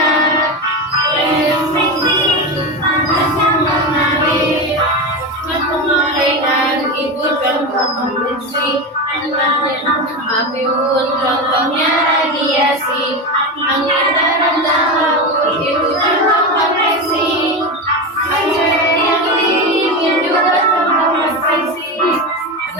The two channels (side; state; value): both; normal; correlation 0.19